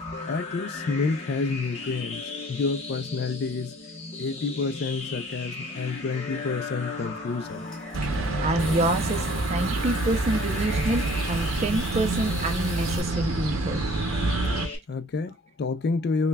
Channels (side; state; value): both; normal; correlation 0.53